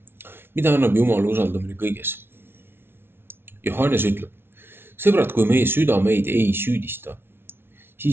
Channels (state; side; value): late; left; 0.11 ms